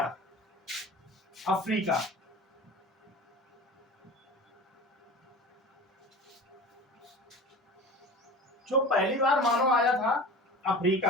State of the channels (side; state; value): both; normal; correlation 0.35